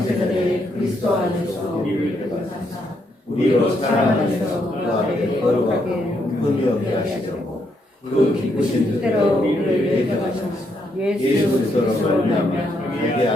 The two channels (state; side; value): normal; both; correlation 0.76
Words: 그리스도 안에서 우리를 구원하사 우리로 사랑 안에서 그 앞에 거룩하게 흠이 없게 하시려고 그 기쁘신 뜻대로 우리를 예정하셨사 예수 그리스도로 말미암아 우리의